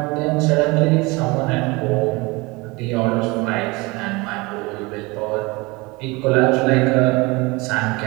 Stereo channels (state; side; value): quieter; left; 24.6 dB